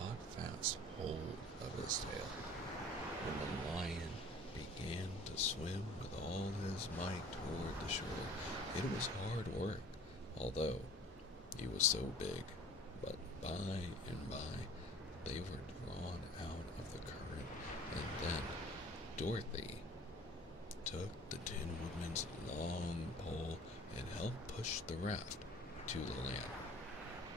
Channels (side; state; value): both; normal; correlation 0.47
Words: fast hold of his tail. When the lion began to swim with all his might toward the shore, it was hard work, although he was so big. But by and by, they were drawn out of the current, and then Dorothy took the Tin Woodman's long pole and helped push the raft to the land.